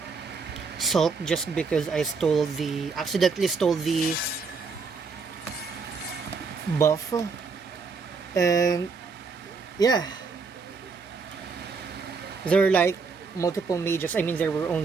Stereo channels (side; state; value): left; quieter; 4.8 dB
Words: sulked just because I accidentally stole the buff. And yeah, there were like multiple mages. I mean, there were